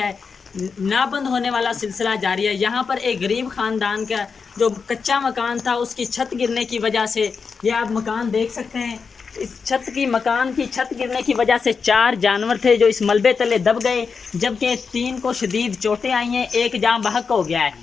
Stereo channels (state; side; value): quieter; right; 5.4 dB